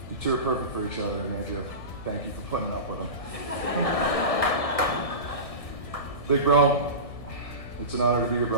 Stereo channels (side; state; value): right; late; 1.7 ms